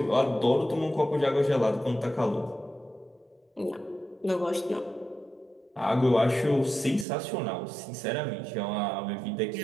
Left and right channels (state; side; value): drops out; left; at 7.1 s